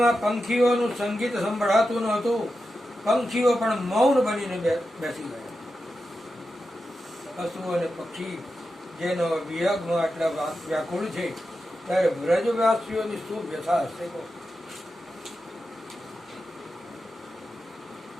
પંખીઓનું સંગીત સંભળાતું નહોતું. પંખીઓ પણ મૌન બનીને બેસી ગયા. પશુ અને પક્ષી જેનો વિયોગમાં આટલા વ્યાકુળ છે, ત્યારે વ્રજવાસીઓની શું વ્યથા હશે?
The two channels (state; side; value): normal; both; correlation 0.90